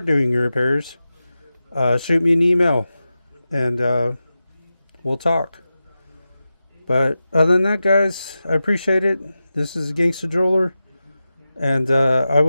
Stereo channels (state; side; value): inverted; both; correlation -0.93